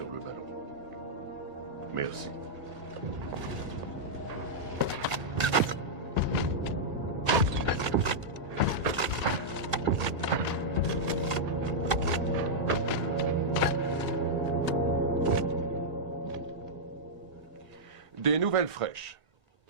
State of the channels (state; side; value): late; left; 1.7 ms